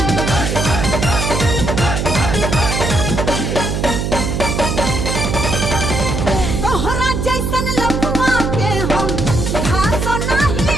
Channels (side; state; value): right; noise; hum, 1 dB below the sound